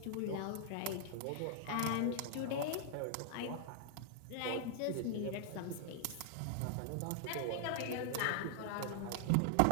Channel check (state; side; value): different; both; correlation 0.00